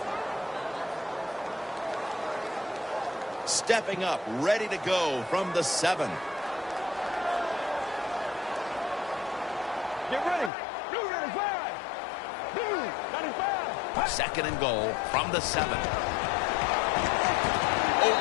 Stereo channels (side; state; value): right; drops out; at 10.5 s